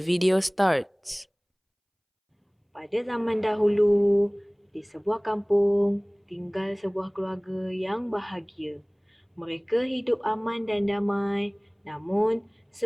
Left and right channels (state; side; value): identical; both; correlation 1.00